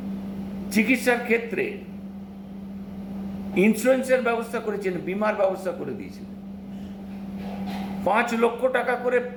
চিকিৎসার ক্ষেত্রে ইন্স্যুরেন্সের ব্যবস্থা করেছিলেন, বিমার ব্যবস্থা করে দিয়েছিলেন। 5 লক্ষ টাকা করে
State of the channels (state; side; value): identical; both; correlation 1.00